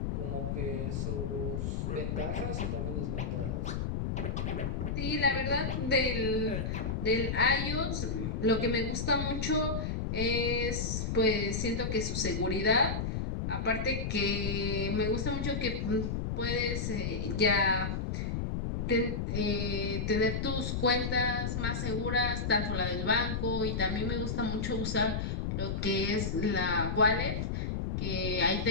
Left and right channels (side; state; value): left; noise; rumble, 1 dB below the sound